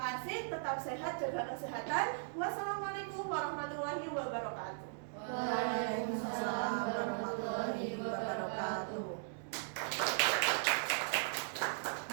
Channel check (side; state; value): left; silent; digital silence